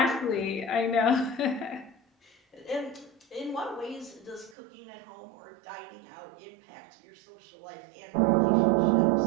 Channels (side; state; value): left; drops out; at 4.5 s